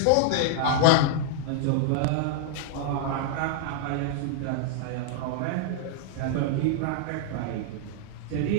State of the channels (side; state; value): both; different; correlation -0.01